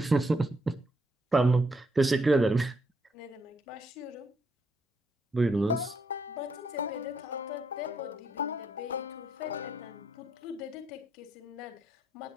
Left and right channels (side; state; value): both; normal; correlation 0.75